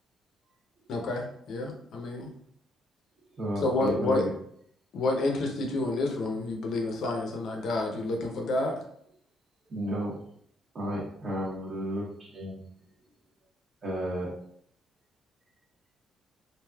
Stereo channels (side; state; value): both; normal; correlation 0.70